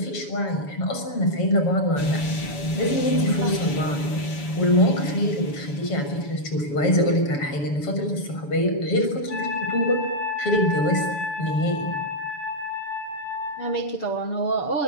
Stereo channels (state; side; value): late; right; 7.0 ms